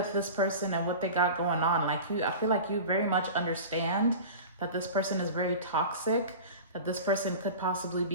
this person and what they got going on. Like, I feel like you very much understand that this person is very toxic, that this person could possibly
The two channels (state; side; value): inverted; both; correlation -0.34